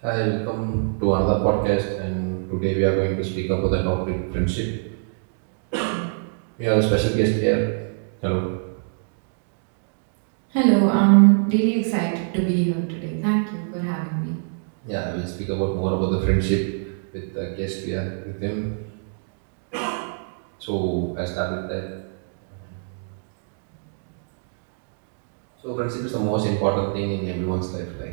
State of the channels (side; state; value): left; silent; digital silence